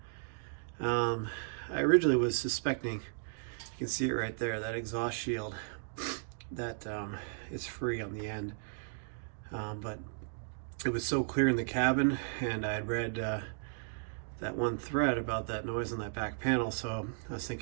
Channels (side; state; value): left; silent; digital silence